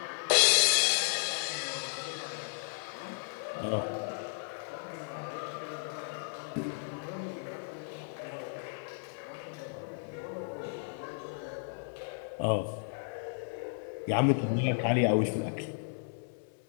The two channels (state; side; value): silent; right; 55 dB below the other